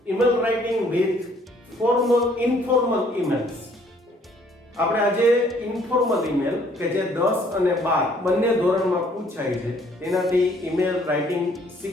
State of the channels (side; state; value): both; normal; correlation 0.62